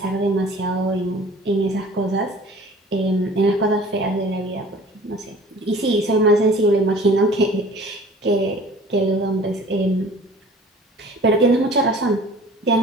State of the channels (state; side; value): normal; both; correlation 0.47